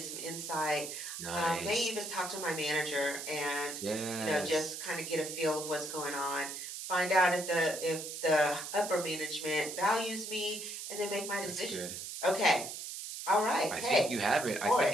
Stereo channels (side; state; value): right; noise; hiss, 7 dB below the sound